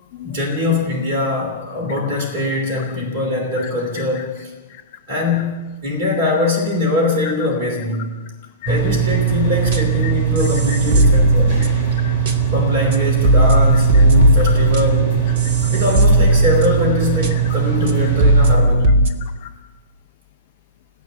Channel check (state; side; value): inverted; both; correlation -0.35